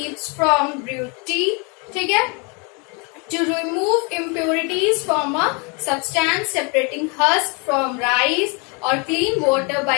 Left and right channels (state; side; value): quieter; right; 32.6 dB